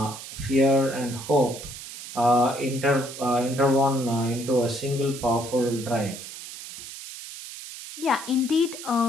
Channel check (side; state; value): right; noise; hiss, 12 dB below the sound